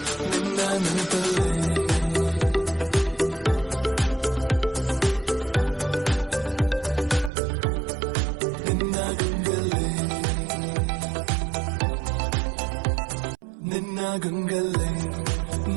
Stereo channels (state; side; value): drops out; left; at 7.3 s